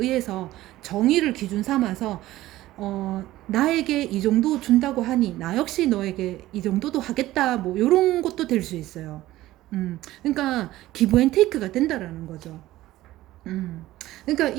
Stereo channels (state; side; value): quieter; left; 15.9 dB